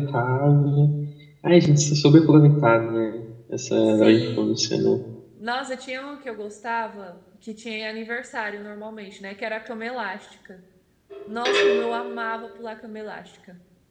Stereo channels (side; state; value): both; identical; correlation 1.00